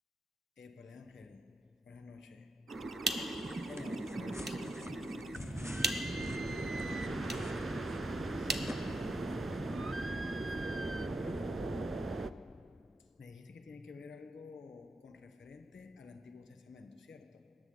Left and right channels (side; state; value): both; normal; correlation 0.83